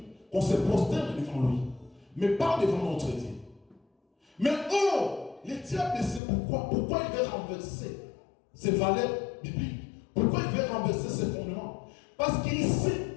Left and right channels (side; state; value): right; drops out; at 6.2 s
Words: qu'on se prosterne devant lui, mais pas devant notre Dieu. Mais oh, le diable sait pourquoi. Pourquoi il veut renverser ses valeurs bibliques? Pourquoi il veut renverser ses fondements? Parce qu'il